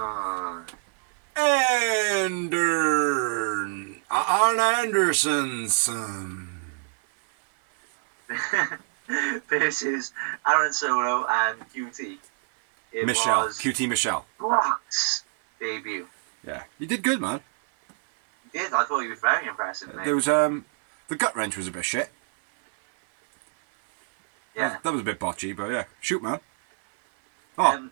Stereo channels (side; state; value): left; silent; 57 dB below the other